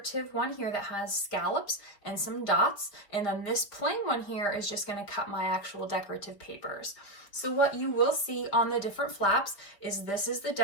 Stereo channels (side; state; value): right; late; 5.1 ms